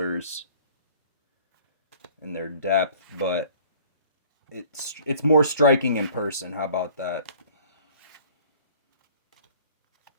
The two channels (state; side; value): inverted; both; correlation -0.51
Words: and their depth, but it's more striking in person. How about that?